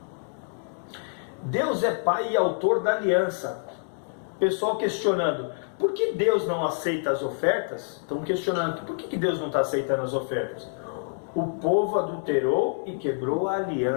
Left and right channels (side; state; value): right; silent; digital silence